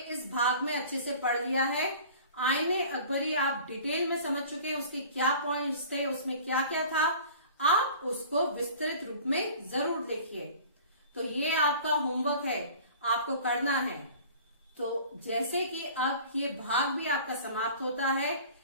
भाग में अच्छे से पढ़ लिया है। आईने अकबरी आप डिटेल में समझ चुके हैं, उसके क्या पॉइंट्स थे, उसमें क्या क्या था। आप उसको विस्तृत रूप में जरूर देखिए। तो ये आपका होमवर्क है, आपको करना है। तो जैसे कि अब ये भाग भी आपका समाप्त होता है,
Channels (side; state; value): both; inverted; correlation -0.45